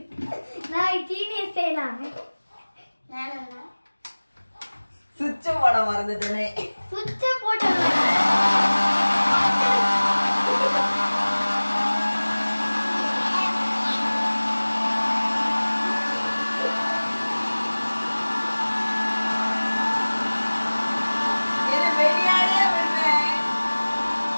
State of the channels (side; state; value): both; inverted; correlation -1.00